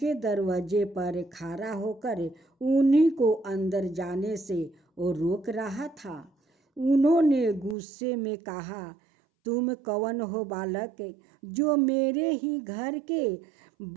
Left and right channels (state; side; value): drops out; left; at 7.8 s